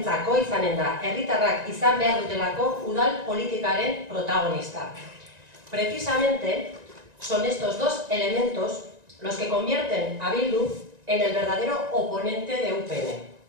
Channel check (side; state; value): left; late; 1.9 ms